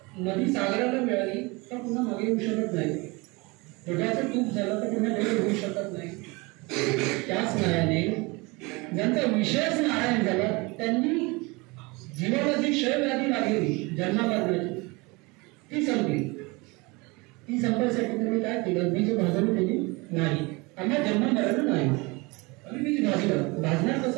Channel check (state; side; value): quieter; left; 25.8 dB